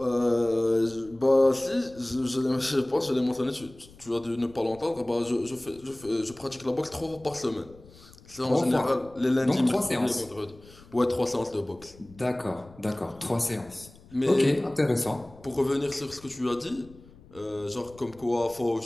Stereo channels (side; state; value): left; noise; rumble, 23 dB below the sound